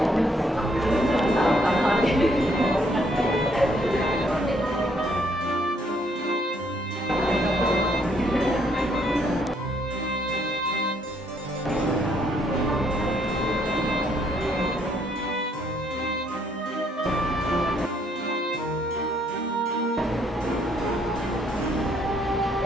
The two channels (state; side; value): normal; both; correlation 0.68